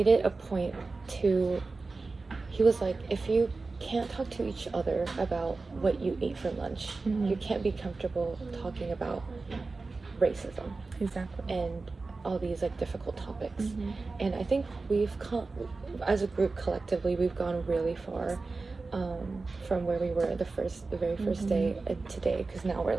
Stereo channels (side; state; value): left; quieter; 3.8 dB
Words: it a point to, he was like, if you can't talk to each other about what you ate for lunch, you can't be comfortable talking about racism. Exactly. And all these like difficult topics. And I think we've come, as a group collectively, we've gone really far from where we were the very first day and today, because now we're